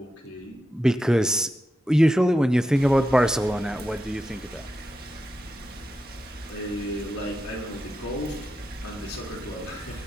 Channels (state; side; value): normal; both; correlation 0.88